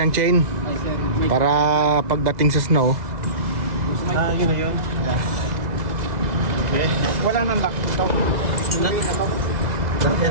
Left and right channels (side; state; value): left; late; 2.0 ms